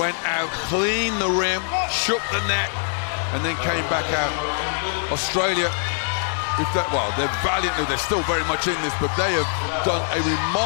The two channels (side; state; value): right; silent; 63 dB below the other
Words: out, cleaned the rim, shook the net, and then came back out. Australia, they're valiant, they're still very much in this, but they have done a